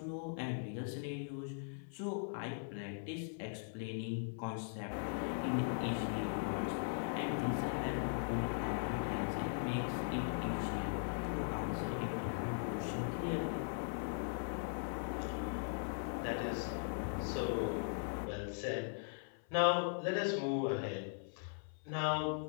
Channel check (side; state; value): right; silent; 51 dB below the other